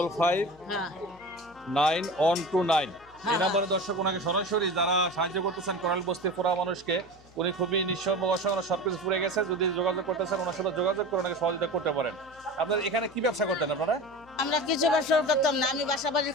এই নাম্বারে দর্শক ওনাকে সরাসরি যারা সাহায্য করতেছেন কোরাল বস্তির পুরা মানুষকে, উনি খুবই নিঃস্ব অসহায়, সবকিছু পুড়ে গেছে। যদি যোগাযোগ করতেছেন ওনার সাথে যোগাযোগ করে ওনাকে সহযোগিতা করতে পারেন। আপনার এখানে কি ব্যবসা করতেন আপনারা? আমরা কিছু ব্যবসা করতাম না, আমি বাসা বাড়ির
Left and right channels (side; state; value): left; noise; hum, 26 dB below the sound